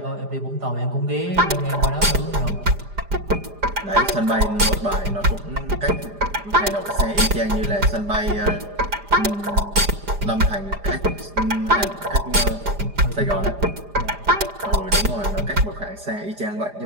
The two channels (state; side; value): late; left; 4.9 ms